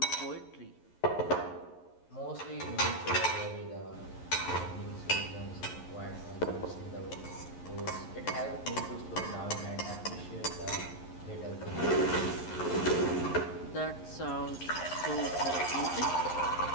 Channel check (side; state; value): right; late; 11 ms